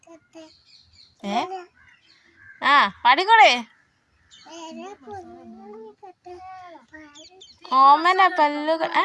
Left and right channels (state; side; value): identical; both; correlation 1.00